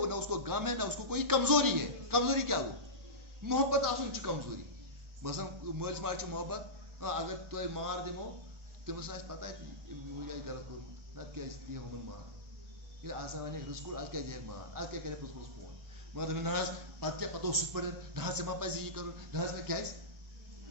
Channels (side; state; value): left; late; 1.4 ms